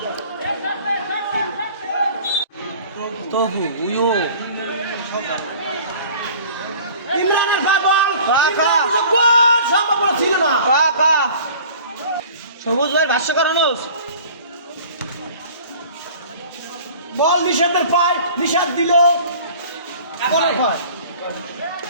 সবুজ ভাই ভাষ্য করানো বল নিষাদের পায়, নিষাদ দিল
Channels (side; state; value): both; inverted; correlation -0.46